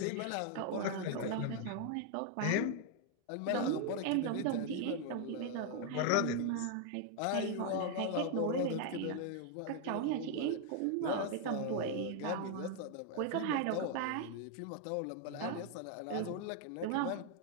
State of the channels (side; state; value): both; different; correlation 0.00